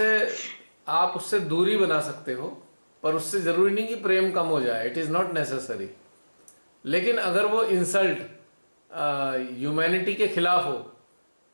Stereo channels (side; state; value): both; inverted; correlation -1.00